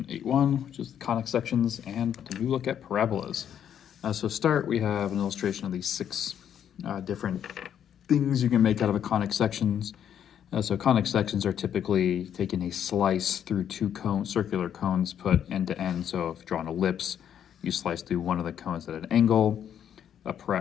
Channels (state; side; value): quieter; right; 9.3 dB